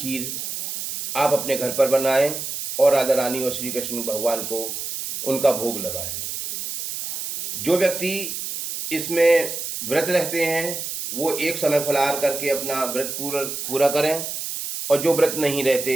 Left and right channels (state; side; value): noise; right; hiss, 5 dB below the sound